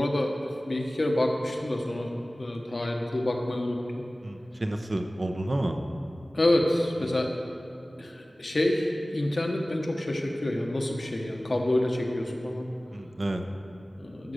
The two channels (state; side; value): normal; both; correlation 0.97